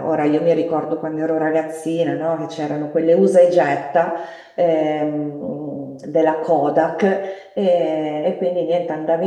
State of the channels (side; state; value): both; identical; correlation 1.00